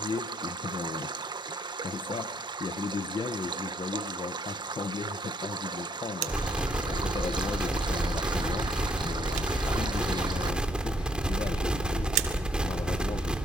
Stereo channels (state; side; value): normal; both; correlation 0.67